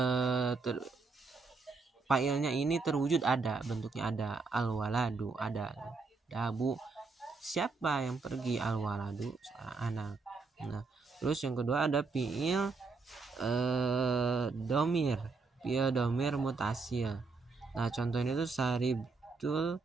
fa'ilnya ini terwujud, ada bentuknya, ada al-waladu, ada dahabu, siapa yang pergi, al-waladu seorang anak. Nah, terus yang kedua ada fi'il domir, fi'il domir mutasil. Nah, contohnya itu saribtul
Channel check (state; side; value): quieter; left; 4.2 dB